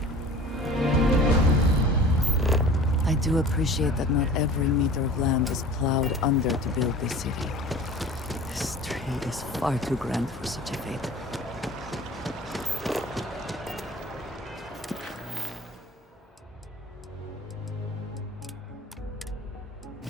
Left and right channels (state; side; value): normal; both; correlation 0.42